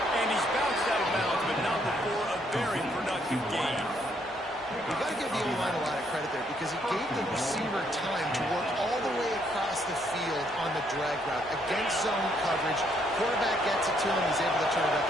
And he's bounced out of bounds, but not before a very productive game. You've got to give the O-line a lot of credit there because it gave the receiver time to work all the way across the field on the drag route against zone coverage. Quarterback gets it to him. He's able to turn it up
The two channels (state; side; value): normal; both; correlation 0.71